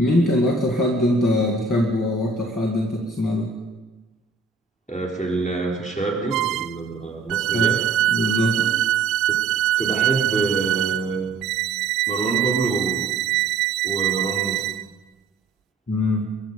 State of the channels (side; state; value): left; quieter; 3.8 dB